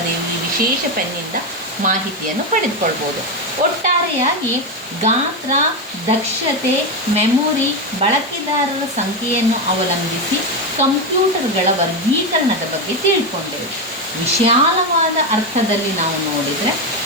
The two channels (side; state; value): both; normal; correlation 0.11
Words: ವಿಶೇಷ ಪೆನ್ನಿಂದ ಮಾಹಿತಿಯನ್ನು ಪಡೆದುಕೊಳ್ಬೋದು. ಒಟ್ಟಾರೆಯಾಗಿ ಗಾತ್ರ, ದಕ್ಷತೆ, ಮೆಮೊರಿ, ಬಳಕೆದಾರರ ಸಂಖ್ಯೆಯನ್ನು ಅವಲಂಬಿಸಿ ಕಂಪ್ಯೂಟರ್ಗಳ ವರ್ಗೀಕರಣದ ಬಗ್ಗೆ ತಿಳ್ಕೊಂಡೆವು. ವಿಶಾಲವಾದ ಅರ್ಥದಲ್ಲಿ ನಾವು ನೋಡಿದರೆ